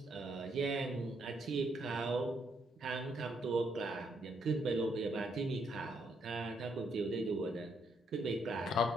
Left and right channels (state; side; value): normal; both; correlation 0.74